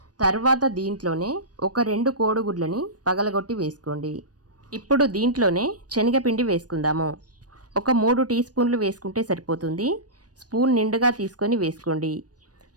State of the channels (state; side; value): late; left; 0.68 ms